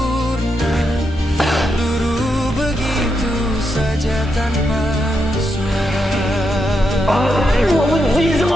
luruh begitu saja tanpa suara. Gue benci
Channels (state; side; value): normal; both; correlation 0.83